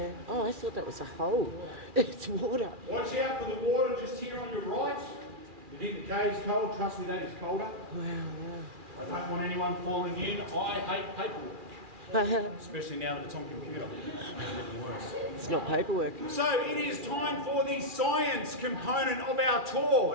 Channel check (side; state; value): left; late; 2.4 ms